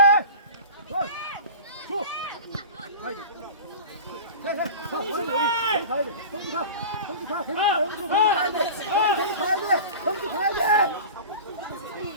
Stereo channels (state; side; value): inverted; both; correlation -0.34